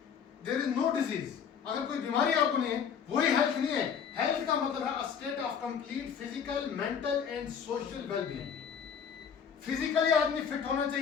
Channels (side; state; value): right; quieter; 7.3 dB